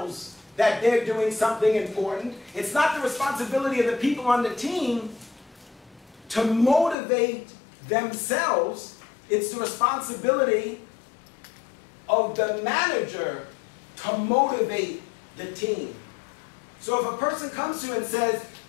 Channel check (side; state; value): right; drops out; at 7.0 s